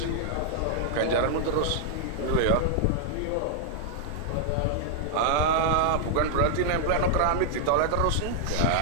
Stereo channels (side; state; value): both; different; correlation -0.01